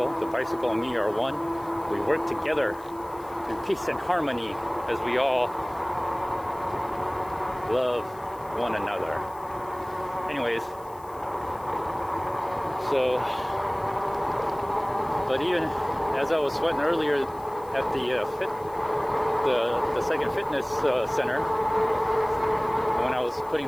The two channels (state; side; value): noise; left; hiss, 25 dB below the sound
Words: The bicycle and me are one. We work together in peace and harmony as we all love one another. Anyways, so, but even as I was sweating earlier at the second fitness center, when I was putting